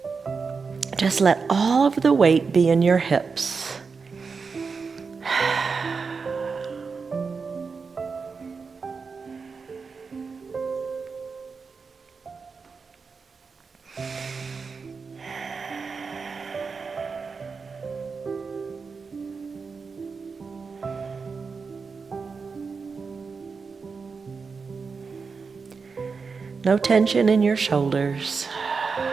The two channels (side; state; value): left; quieter; 5.0 dB